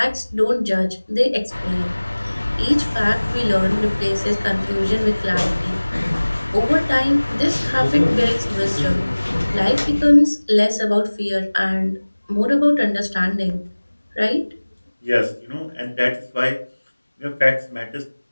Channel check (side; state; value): both; inverted; correlation -1.00